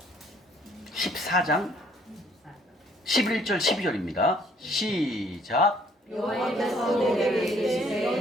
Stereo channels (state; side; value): normal; both; correlation 0.62